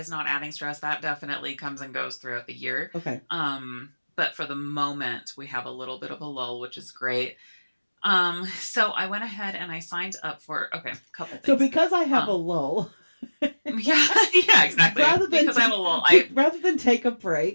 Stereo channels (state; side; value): inverted; both; correlation -1.00